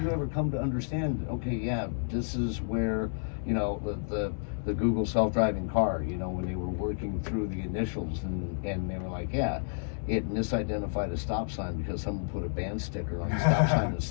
ever come to understand, okay, yeah, this is where, you know, the Google self-driving car, you know, when they were working through the initials and they were like, yeah, it misidentified a stop sign because someone put a band sticker on the stop sign in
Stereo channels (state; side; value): silent; right; digital silence